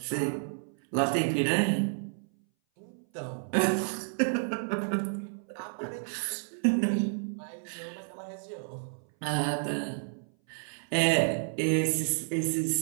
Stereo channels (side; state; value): left; silent; 57 dB below the other